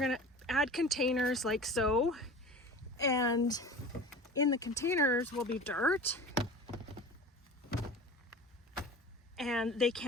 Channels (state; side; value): normal; both; correlation 0.37